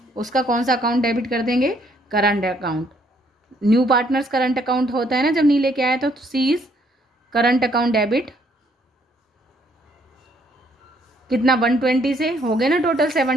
उसका कौन सा अकाउंट डेबिट कर देंगे, current account. New partners current account होता है ना जब नहीं लेके आया, तो सीज करंट अकाउंट डेबिट कितना 120 से हो गए ना, total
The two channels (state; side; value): normal; both; correlation 0.67